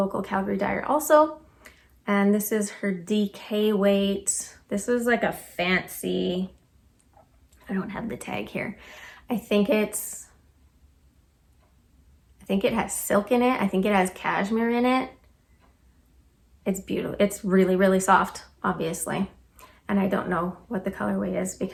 Calgary dyer also. And this is her DK weight. This is like a fancy, I don't have the tag here. I think it has silk in it. I think it has cashmere in it. It's beautiful. It's really, really soft, obviously. And I don't know what the colorway is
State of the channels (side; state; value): both; identical; correlation 1.00